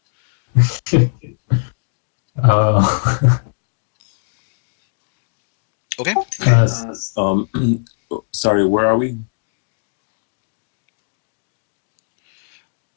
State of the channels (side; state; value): right; silent; digital silence